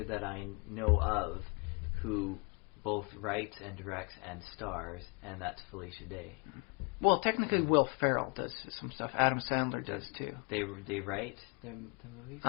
that I know of who both writes and directs and stars, and that's Felicia Day. Well, technically, Will Ferrell does some stuff. Adam Sandler does too. They write the movies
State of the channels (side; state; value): right; quieter; 33.3 dB